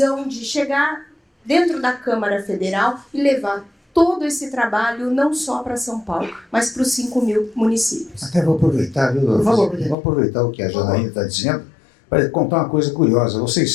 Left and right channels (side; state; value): right; drops out; at 10.0 s